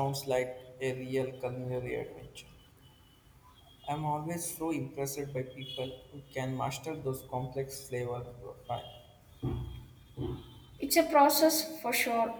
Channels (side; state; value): both; identical; correlation 1.00